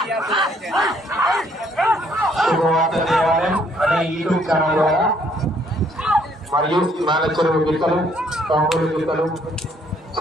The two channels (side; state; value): both; normal; correlation 0.66